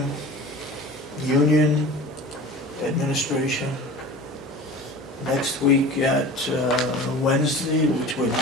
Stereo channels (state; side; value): normal; both; correlation 0.38